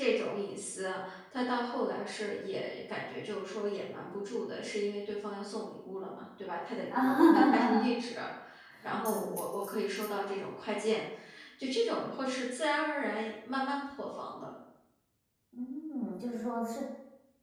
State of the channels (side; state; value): both; identical; correlation 1.00